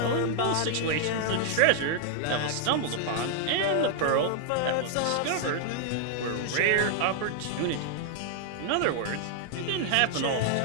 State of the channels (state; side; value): different; both; correlation 0.00